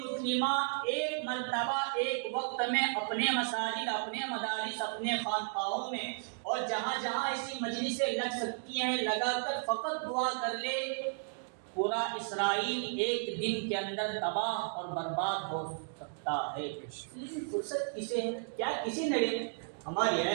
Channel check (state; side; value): silent; left; digital silence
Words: ایک مرتبہ ایک وقت میں اپنے مساجد، اپنے مدارس، اپنے خانقاہوں میں اور جہاں جہاں ایسی مجلسیں لگ سکتی ہیں لگا کر فقط دعا کر لے، پورا اسرائیل ایک دن کے اندر تباہ اور برباد ہو سکتا ہے۔ لیکن فرصت کسے ہے؟ کیا کسی نڑے؟ ہماری